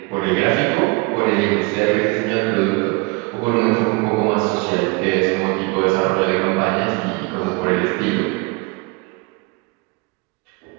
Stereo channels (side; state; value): left; quieter; 27.3 dB